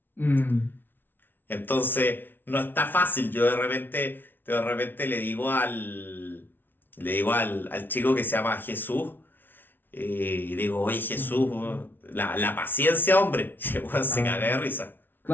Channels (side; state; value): right; late; 0.096 ms